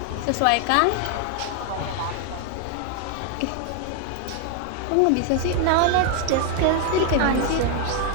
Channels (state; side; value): different; both; correlation 0.00